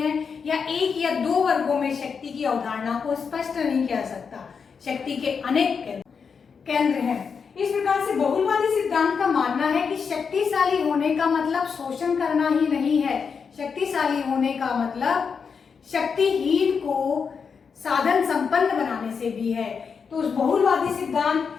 है, या एक या दो वर्गों में शक्ति की अवधारणा को स्पष्ट नहीं किया सकता, शक्ति के अनेक केंद्र हैं। इस प्रकार से बहुलवादी सिद्धांत का मानना है कि शक्तिशाली होने का मतलब शोषण करना ही नहीं है, शक्तिशाली होने का मतलब शक्तिहीन को साधन संपन्न बनाने से भी है। तो उस बहुलवादी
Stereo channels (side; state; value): right; quieter; 6.0 dB